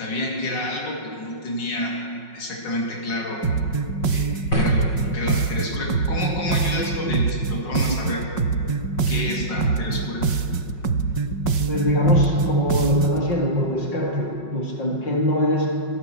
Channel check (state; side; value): late; right; 5.4 ms